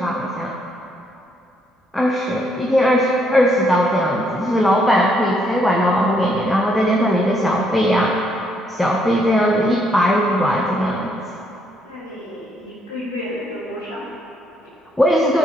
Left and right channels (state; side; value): normal; both; correlation 0.72